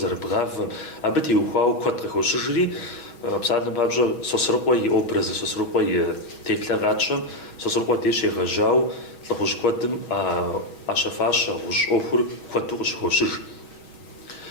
абы теухуауэ куэд къыхощыжри, псалъэм папщӏэ Сосрыкъуэ и образы, Сосрыкъуэ и теплъэгъатщӏэм Сосрыкъуэ деж егъэжьауэ лӏыхъужь куэдым ӏэщэфащэ гъущӏ ӏуэхур куэду къыщыхощыж.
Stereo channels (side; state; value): right; late; 6.3 ms